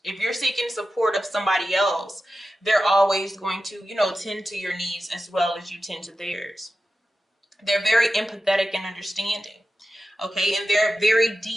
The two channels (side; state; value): both; normal; correlation 0.92